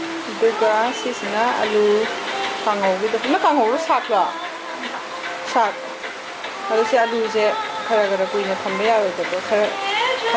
ꯑꯗꯨꯒ ꯁꯤꯁꯤꯅ ꯑꯂꯨ ꯀꯥꯡꯍꯧꯒꯤꯗꯣ. ꯅꯪ ꯀꯥꯡꯍꯧꯔꯣ ꯁꯥꯛꯂꯣ? ꯁꯥꯛ. ꯑꯗꯣ ꯁꯤ ꯑꯂꯨꯁꯦ ꯈꯔ ꯀꯨꯏꯅ ꯊꯝꯕ ꯌꯥꯔꯣꯏꯗꯕ ꯈꯔ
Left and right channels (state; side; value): identical; both; correlation 1.00